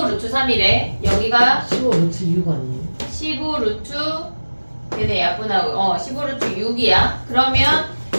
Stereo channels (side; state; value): both; inverted; correlation -1.00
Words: 루트 3이래. 여기가 15 루트 6 아니에요? 15 루트 얘네 약분하고 15 루트 6이야. 그러면